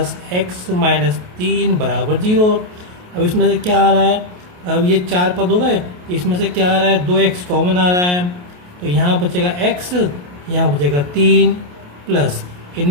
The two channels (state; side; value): late; left; 28 ms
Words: x माइनस 3 बराबर 0। अब इसमें से क्या आ रहा है? अब ये 4 पद हो गए, इसमें से क्या आ रहा है? 2x कॉमन आ रहा है, तो यहाँ बचेगा x, यहाँ बचेगा 3 प्लस